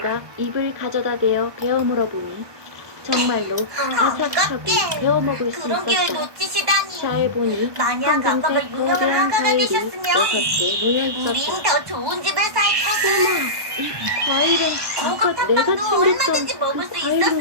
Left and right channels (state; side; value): late; left; 1.2 ms